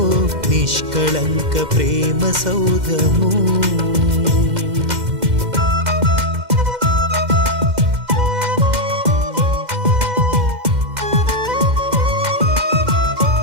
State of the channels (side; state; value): left; late; 2.1 ms